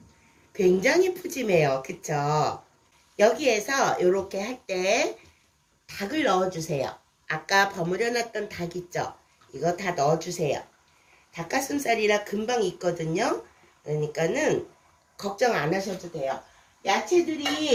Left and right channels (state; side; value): identical; both; correlation 1.00